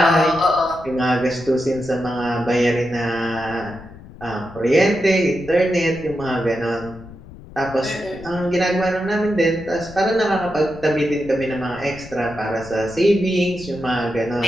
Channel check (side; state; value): left; noise; rumble, 18 dB below the sound